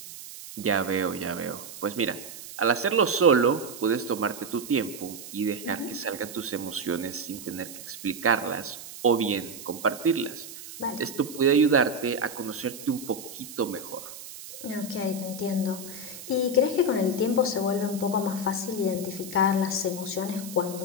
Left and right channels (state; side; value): noise; right; hiss, 13 dB below the sound